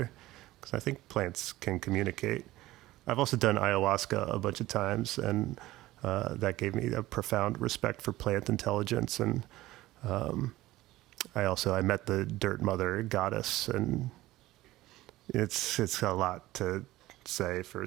Because I think plants can communicate. I've also done ayahuasca a bunch of times, and that gave me a profound respect for plant intelligence. And I met the dirt mother goddess, and it's a lot to say for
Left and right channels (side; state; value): left; quieter; 17.0 dB